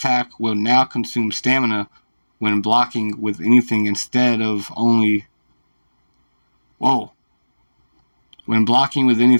will now consume stamina when blocking with anything instead of only... Whoa. When blocking with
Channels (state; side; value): inverted; both; correlation -1.00